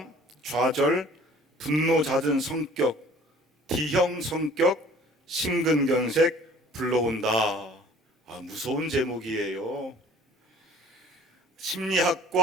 좌절, 분노 잦은 성격, D형 성격, 심근경색 불러온다. 무서운 제목이에요.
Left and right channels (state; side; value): normal; both; correlation 0.50